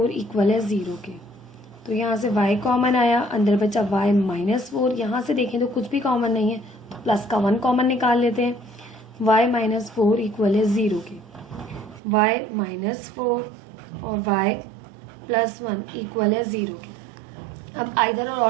इक्वल है 0 के। तो यहाँ से y कॉमन आया, अंदर बचा y -4। यहाँ से देखें तो कुछ भी कॉमन नहीं है, तो प्लस का 1 कॉमन निकाल लेते हैं, y -4 इक्वल है 0 के। y -4 और y +1 इक्वल है 0 के। अब आइदर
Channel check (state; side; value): drops out; left; at 12.0 s